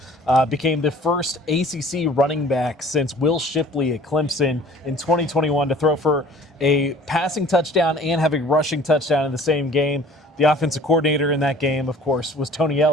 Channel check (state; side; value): normal; both; correlation 0.50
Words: became the first ACC running back since Will Shipley at Clemson in 2021 to throw for a passing touchdown and have a rushing touchdown in the same game. The offensive coordinator in that game, of course, was Tony